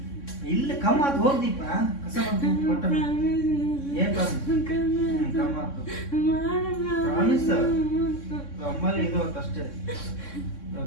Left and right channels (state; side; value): late; right; 3.6 ms